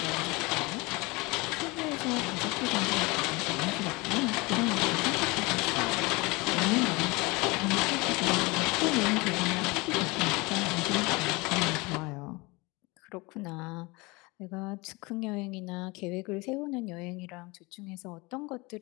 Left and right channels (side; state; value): right; quieter; 25.1 dB